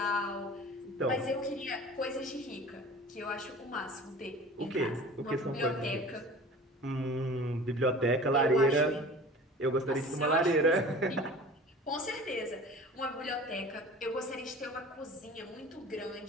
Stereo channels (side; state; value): both; normal; correlation 0.41